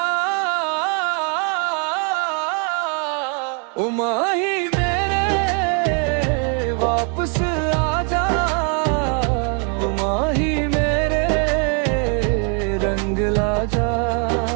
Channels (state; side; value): quieter; left; 39.4 dB